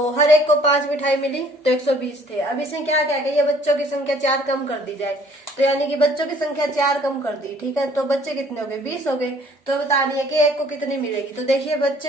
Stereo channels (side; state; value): both; normal; correlation 0.57